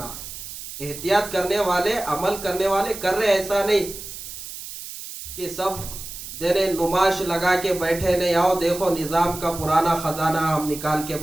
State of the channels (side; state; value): right; noise; hiss, 11 dB below the sound